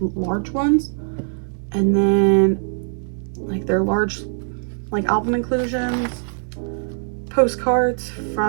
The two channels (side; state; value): left; silent; digital silence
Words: ones. And then like their large like album inclusions, postcards